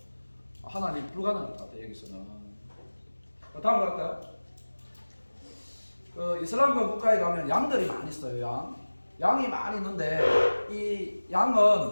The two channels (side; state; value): both; inverted; correlation -1.00